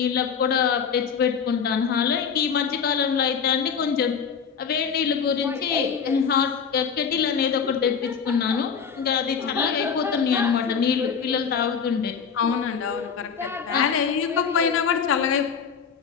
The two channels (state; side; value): quieter; right; 6.7 dB